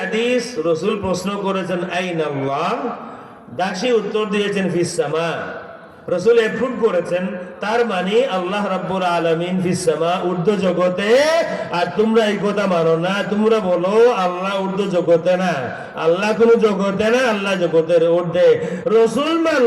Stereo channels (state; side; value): identical; both; correlation 1.00